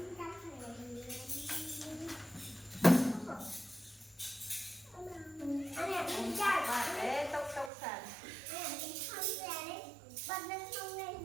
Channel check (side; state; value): left; drops out; at 7.7 s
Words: Anh em đi chạy và để tốc sàn Anh em đi không ra đấy Bật lên không lên